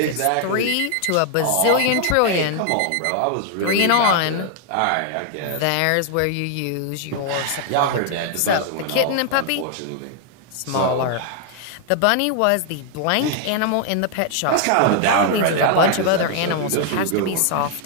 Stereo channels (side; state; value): both; different; correlation 0.00